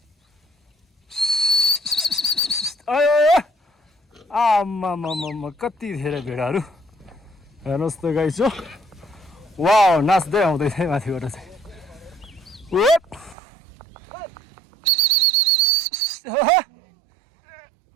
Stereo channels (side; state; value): left; drops out; at 13.4 s